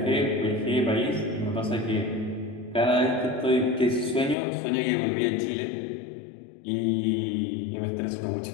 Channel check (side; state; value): right; drops out; at 4.4 s